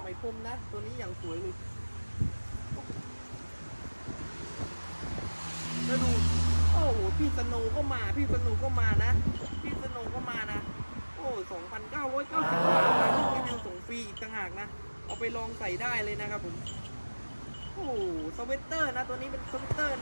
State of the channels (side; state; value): both; inverted; correlation -1.00